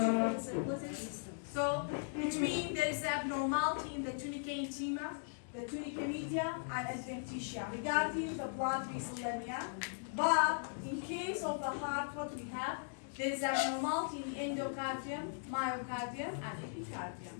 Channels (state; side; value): silent; right; digital silence